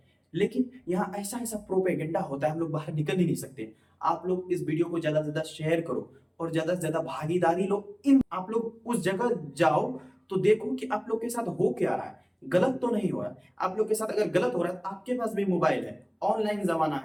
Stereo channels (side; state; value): both; identical; correlation 1.00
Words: लेकिन यहाँ ऐसा ऐसा प्रोपेगेंडा होता है, हम लोग बाहर निकल ही नहीं सकते। आप लोग इस वीडियो को ज्यादा से ज्यादा शेयर करो और ज्यादा से ज्यादा भागीदारी लो। इन आप लोग उस जगह जाओ तो देखो कि आप लोग के साथ हो क्या रहा है, गलत तो नहीं हो रहा है। आप लोग के साथ अगर गलत हो रहा है, आपके पास भी मोबाइल है, ऑनलाइन जमाना